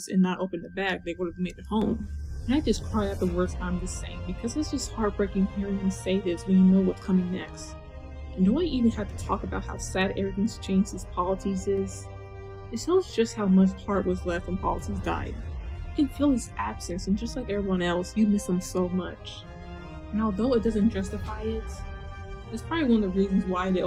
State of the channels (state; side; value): identical; both; correlation 1.00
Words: and not opened the bag, they would have made it home. And I just cry at the words I'm just saying because it's just heartbreaking hearing him say this when you know what's coming next. And do I even have to talk about how sad everything's changed since Polites is? It shows just how much heart was left when Polites died. You can feel his absence, and just like everyone else, you miss him so much. And although it doesn't justify it, it's probably one of the reasons why they